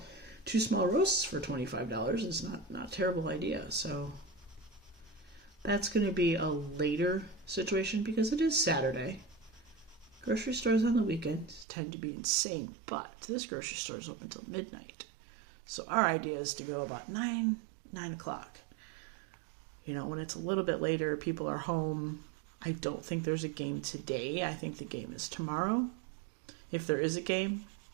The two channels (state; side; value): drops out; left; at 11.7 s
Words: roasts for $25. It's not a terrible idea. So that's going to be a later situation because it is Saturday. Grocery stores on the weekends tend to be insane, but this grocery store is open until midnight. So our idea is to go about 9 o'clock. You know, when it's a little bit later, people are home. I don't think there's a game today. I think the game is tomorrow. If there is a game,